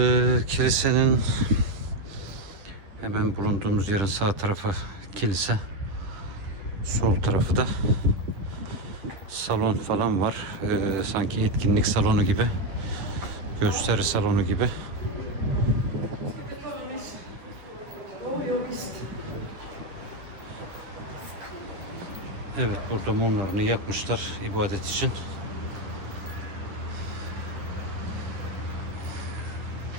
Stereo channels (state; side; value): late; left; 10 ms